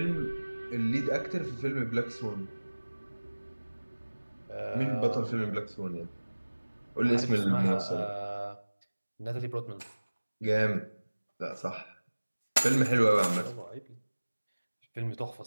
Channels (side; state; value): both; inverted; correlation -1.00